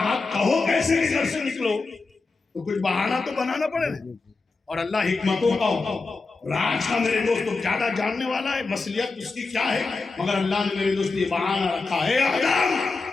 کہو کیسے کہ گھر سے نکلو, تو کچھ بہانہ تو بنانا پڑے نا. اور اللہ حکمتوں کا راج کا میرے دوست زیادہ جاننے والا ہے, مصلیت اس کی کیا ہے, مگر اللہ نے میرے دوست یہ بہانہ رکھا ہے آدم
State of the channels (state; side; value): quieter; right; 3.9 dB